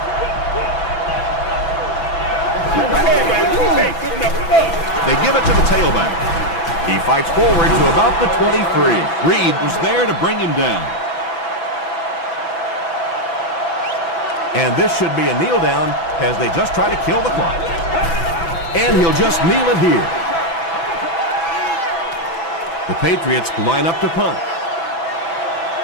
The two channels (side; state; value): right; late; 6.0 ms